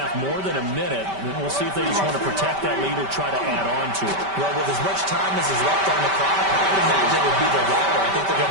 more than a minute. And we'll see if they just want to protect that lead or try to add on to it. Well, with as much time as is left on the clock, I would imagine it would be the latter. I think they're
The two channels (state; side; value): late; left; 5.1 ms